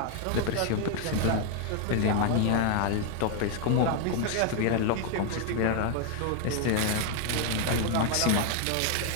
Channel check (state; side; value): different; both; correlation 0.01